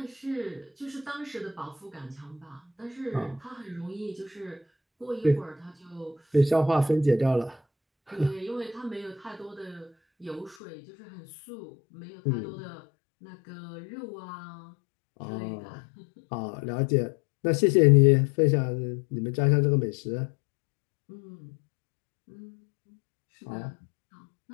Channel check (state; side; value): drops out; right; at 10.6 s